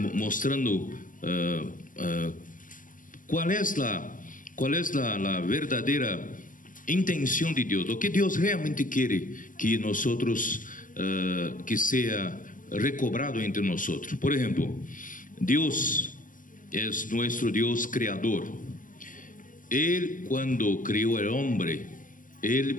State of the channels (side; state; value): right; late; 0.38 ms